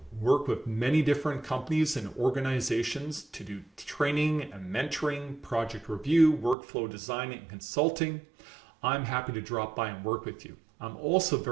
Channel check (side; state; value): left; drops out; at 6.6 s